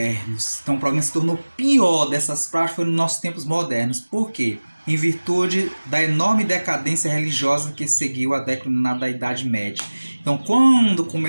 Então o problema se tornou pior dessas práticas foi nos nossos tempos modernos. Por quê? Em virtude da enorme decadência religiosa que seguiu a declinar da Idade Média. Então, quando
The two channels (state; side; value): inverted; both; correlation -1.00